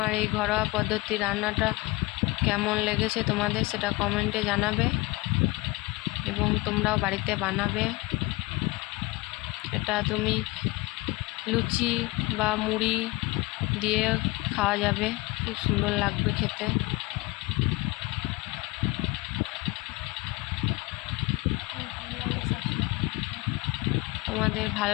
এই ঘরোয়া পদ্ধতি রান্নাটা কেমন লেগেছে তোমাদের সেটা কমেন্টে জানাবে এবং তোমরাও বাড়িতে বানাবে। এটা তুমি লুচি বা মুড়ি দিয়ে খাওয়া যাবে, খুব সুন্দর লাগবে খেতে। তোমাদের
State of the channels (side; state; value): right; quieter; 22.4 dB